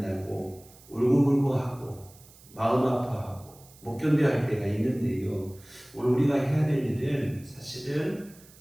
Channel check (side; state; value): right; noise; hiss, 24 dB below the sound